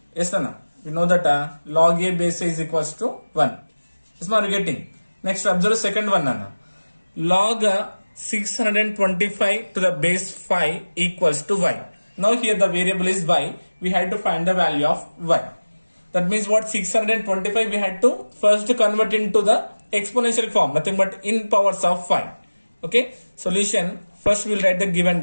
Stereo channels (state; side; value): inverted; both; correlation -1.00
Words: yes Anna, we know that log a base a is equals to 1. Is what you getting? Next observe the second one Nana. Log 625 to the base 5 equals to y. Now here the variable is y. We had to find the value of y. That means what? 625 we had to first convert into the exponential form, nothing but in powers of 5. Okay, solution. First we'll write the given